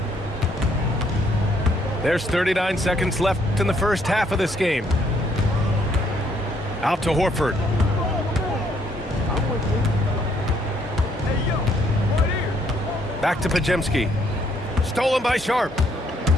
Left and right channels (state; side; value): normal; both; correlation 0.68